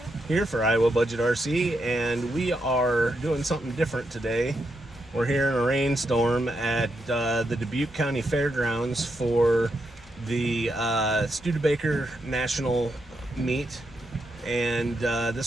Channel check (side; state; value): both; normal; correlation 0.82